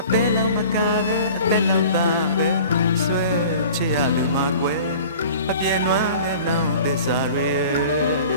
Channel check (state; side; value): inverted; both; correlation -0.44